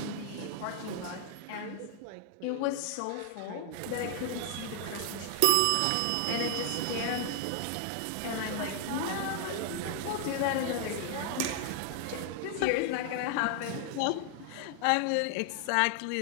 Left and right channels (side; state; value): both; different; correlation 0.00